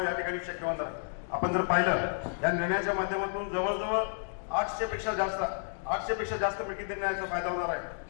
या ठिकाणी शक्य होणार आहे. आपण जर पाहिलं या निर्णयाच्या माध्यमातून जवळजवळ 800 पेक्षा जास्त मिळकती त्यांना याचा फायदा होणार आहे.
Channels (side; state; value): right; silent; digital silence